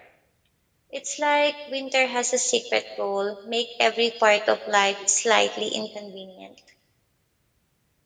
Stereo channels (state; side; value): identical; both; correlation 1.00